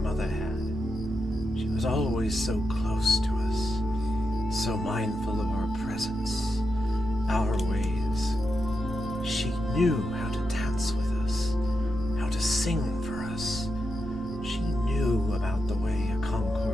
had. She was always so close to us, so mindful of our presence, our ways. She knew how to dance with us, how to sing for us. She knew about the way a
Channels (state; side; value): normal; both; correlation 0.86